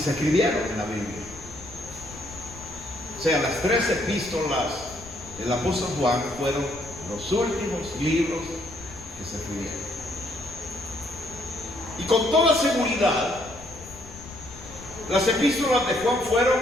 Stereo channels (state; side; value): noise; left; rumble, 17 dB below the sound